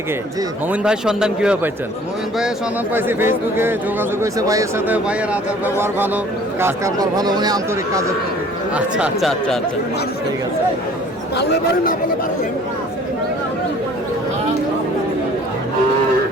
জি। মমিন ভাই সন্ধান কিভাবে পাইছেন? মোমিন ভাইয়ের সন্ধান পাইছি ফেসবুকে, যোগাযোগ হয়েছে ভাইয়ের সাথে। ভাইয়ের আচার ব্যবহার ভালো, কাজ কারবার ভালো, উনি আন্তরিক কাজের প্রতি। আচ্ছা আচ্ছা আচ্ছা আচ্ছা, ঠিক আছে।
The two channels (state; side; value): normal; both; correlation 0.52